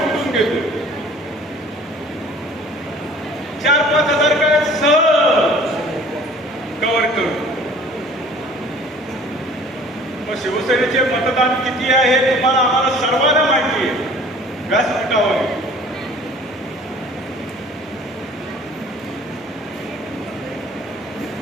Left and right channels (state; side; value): normal; both; correlation 0.50